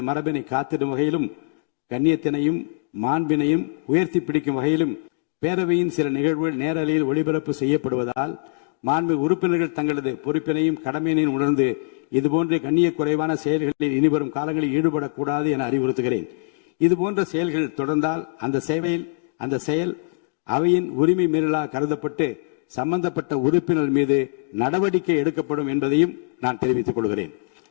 மரபினை காத்திடும் வகையிலும் கண்ணியத்தினையும் மாண்பினையும் உயர்த்தி பிடிக்கும் வகையிலும் பேரவையின் சில நிகழ்வுகள் நேரலையில் ஒளிபரப்பு செய்யப்படுவதால் மாண்பு உறுப்பினர்கள் தங்களது பொறுப்பினையும் கடமையினையும் உணர்ந்து இதுபோன்ற கண்ணிய குறைவான செயல்களில் இனிவரும் காலங்களில் ஈடுபடக்கூடாது என அறிவுறுத்துகிறேன். இதுபோன்ற செயல்கள் தொடர்ந்தால் அந்த செயல் அவையின் உரிமை மீறலாக கருதப்பட்டு சம்பந்தப்பட்ட உறுப்பினர் மீது நடவடிக்கை எடுக்கப்படும் என்பதையும் நான் தெரிவித்துக் கொள்கிறேன்.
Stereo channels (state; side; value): silent; right; digital silence